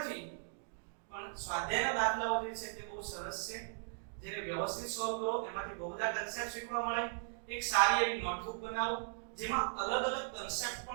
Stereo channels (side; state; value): left; silent; digital silence